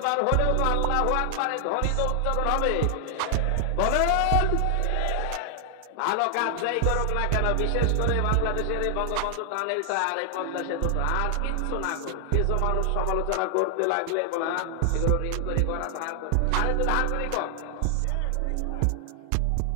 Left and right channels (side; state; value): both; different; correlation 0.00